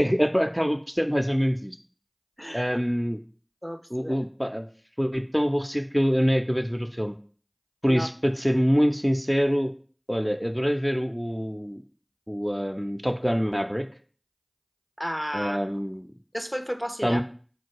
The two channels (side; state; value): both; identical; correlation 1.00